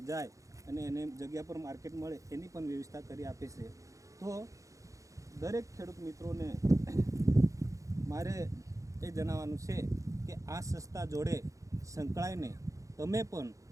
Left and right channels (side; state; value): left; late; 0.16 ms